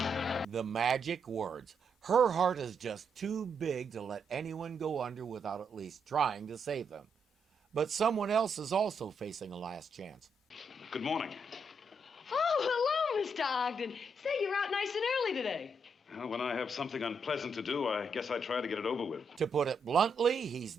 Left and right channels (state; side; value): normal; both; correlation 0.78